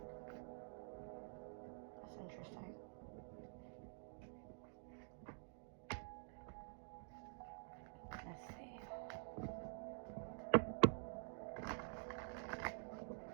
That's interesting. Let's see.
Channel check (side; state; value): left; silent; digital silence